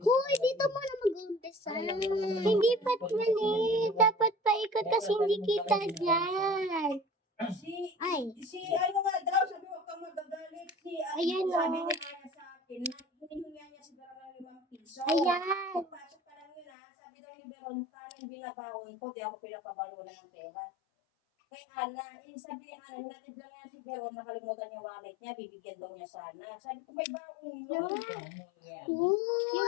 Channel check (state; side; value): drops out; right; at 16.7 s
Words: Hoy, dito mo na mag-umpisa. Hindi pat mali. Dapat paikot kasi hindi kita dyan. Si ano nga daw, sabi mo kang magagalit. Ayan, sabi oh. ni Aya sa akin, hinihinga niya si Veron ng 5 piso. Ayan. Pagpasok pa lang yun sabi daw ni Veron, tanong binabawon ko, di ako pinapabalo na ng pera. Kay Ana, sabi ni Ana, natid lang niya si Veron, nakalimutan yung wallet niya, bibigyan daw niya sana. Sabi ko, may baon yun.